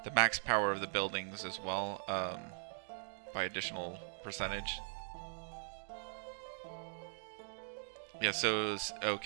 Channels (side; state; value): left; silent; digital silence